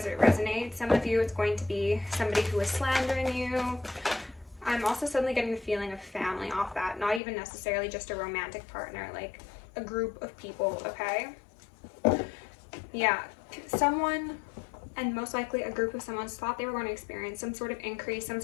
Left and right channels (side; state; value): right; drops out; at 7.2 s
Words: it resonates. Some of you, it's going to be somebody who is slandering you. I'm also suddenly getting the feeling of family off that, not even necessarily just a romantic partner, like a group of people, okay? Yeah, someone, and most likely a group of someone's thought they were going to experience some sort of increase, some